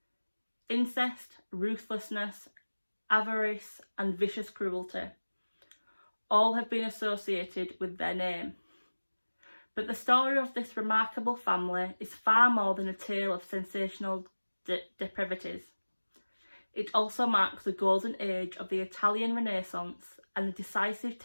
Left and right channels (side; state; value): both; inverted; correlation -1.00